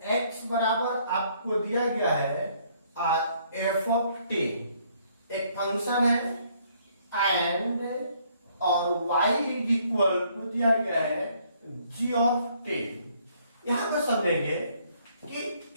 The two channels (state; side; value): inverted; both; correlation -0.66